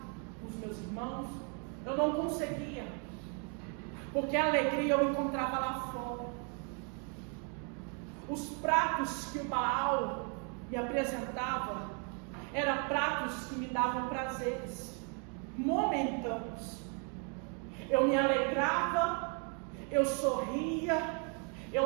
com os meus irmãos. Eu não conseguia, porque a alegria eu encontrava lá fora. Os pratos que o Baal me apresentava eram pratos que me davam prazeres momentâneos. Eu me alegrava, eu sorria,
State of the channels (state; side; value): quieter; left; 39.4 dB